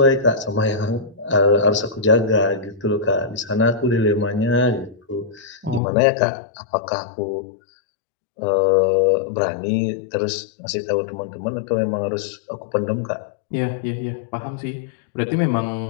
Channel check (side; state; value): right; drops out; at 5.8 s